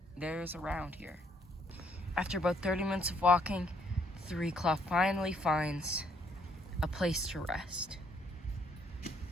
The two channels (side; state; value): both; normal; correlation 0.68